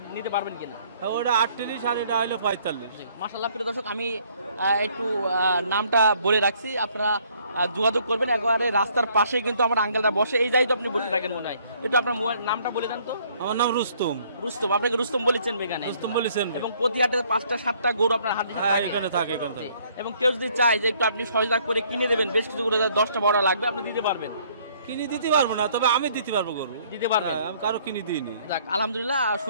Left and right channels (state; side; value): inverted; both; correlation -0.63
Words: নিতে পারবেন কিনা? হ্যাঁ, ওটা 38 আর এটা হলো 45। মাশাআল্লাহ প্রিয় দর্শক, আমি একটু নামটা বলে রাখছি, আপনারা যোগাযোগ করবেন। একেবারে রাস্তার পাশে কিন্তু আমার আঙ্কেলটা বসে, এই যাই তো আপনি বসে থাকেন মনে হয়। একটু আপনার মোবাইল নামটা বলে দেন তো। আমার নাম রুস্তম। রুস্তম, আপনাকে রুস্তম বলেছেন এখানে? রুস্তম বলেছেন। এবং প্রতি হাটে 5টা-7টা গরু আপনার হাটে হ্যাঁ, এখানে থাকে। এবং কেউ যদি চায় যে একটু আপনি সহযোগিতা করে কিনে দেবেন, বেশ কিছু গরু 10টা বড় লাগবে, আপনি দিতে পারবেন? কিনে দিতে পারবো না, তবে আমি দিতে পারবো গরু। দিতে পারবেন? হ্যাঁ, আমি কারো কিনে দিইনি। যাক আলহামদুলিল্লাহ,